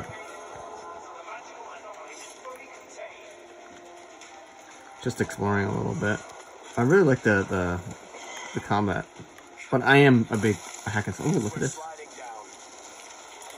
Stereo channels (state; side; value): identical; both; correlation 1.00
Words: Just exploring a little bit. I really like the combat, but I am a big hack and slash. Oh, look at this.